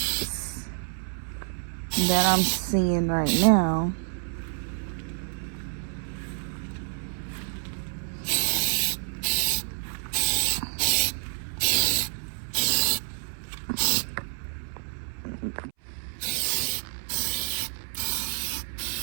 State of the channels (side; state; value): left; silent; 59 dB below the other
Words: that I'm seeing right now.